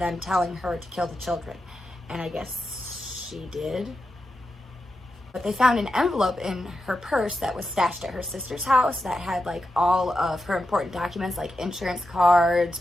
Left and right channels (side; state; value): both; normal; correlation 0.88